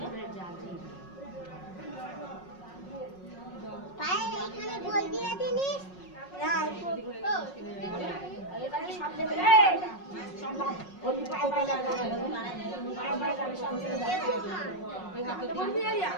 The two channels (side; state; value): right; late; 5.5 ms